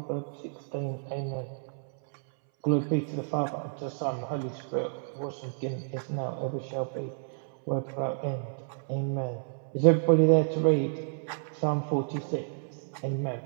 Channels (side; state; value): left; silent; 58 dB below the other